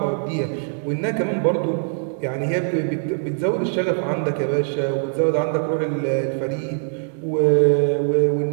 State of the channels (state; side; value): silent; left; 64 dB below the other